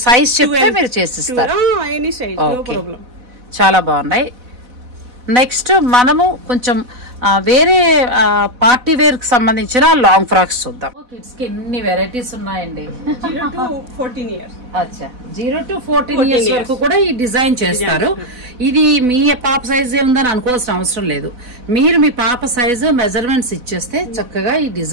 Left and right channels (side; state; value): left; late; 4.1 ms